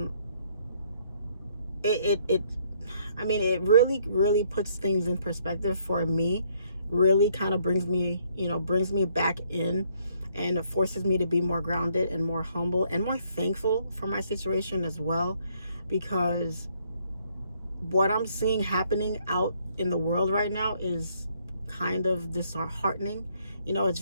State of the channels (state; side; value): inverted; both; correlation -0.67